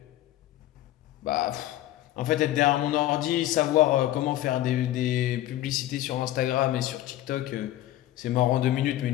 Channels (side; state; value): right; quieter; 14.3 dB